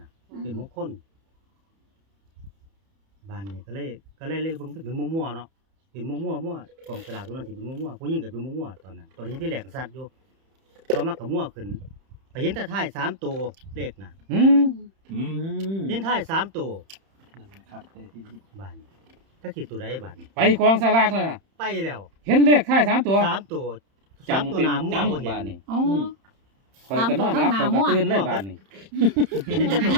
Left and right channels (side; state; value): left; late; 31 ms